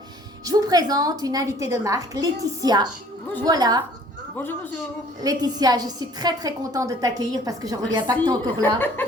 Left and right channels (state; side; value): normal; both; correlation 0.54